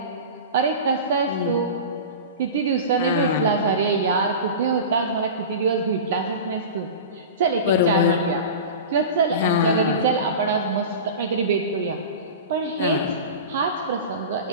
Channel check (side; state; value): both; inverted; correlation -0.30